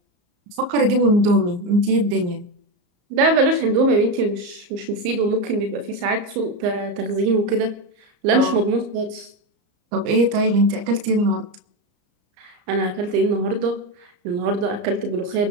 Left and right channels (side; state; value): left; late; 34 ms